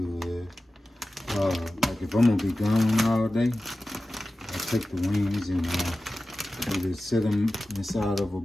is, like if I'm gonna be gone all day, I take the wings and either set them inside of a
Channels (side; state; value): both; normal; correlation 0.95